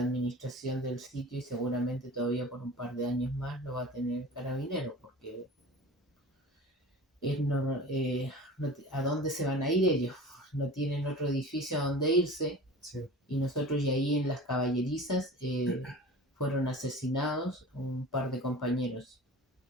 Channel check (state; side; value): normal; both; correlation 0.38